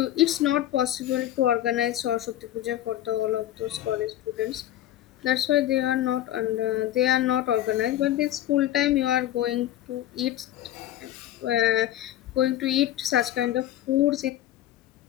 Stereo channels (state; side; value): quieter; right; 13.0 dB